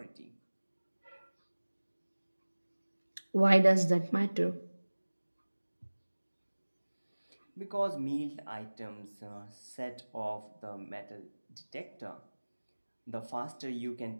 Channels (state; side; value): inverted; both; correlation -1.00